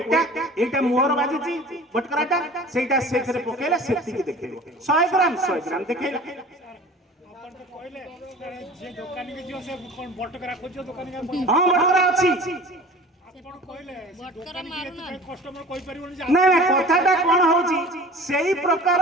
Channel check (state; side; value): normal; both; correlation 0.42